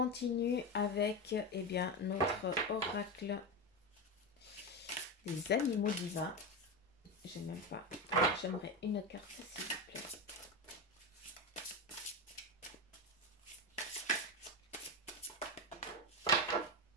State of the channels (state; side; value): normal; both; correlation 0.15